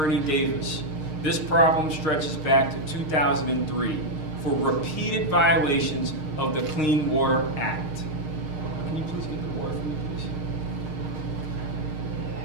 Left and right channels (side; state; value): left; late; 6.5 ms